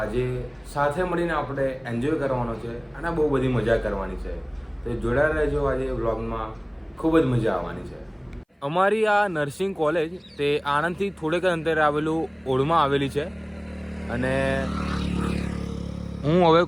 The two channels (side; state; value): both; identical; correlation 1.00